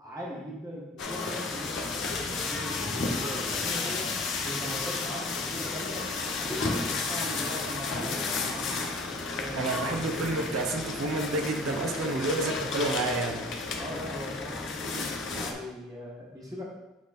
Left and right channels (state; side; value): normal; both; correlation 0.43